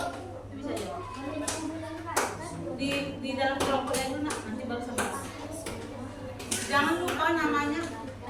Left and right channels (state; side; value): identical; both; correlation 1.00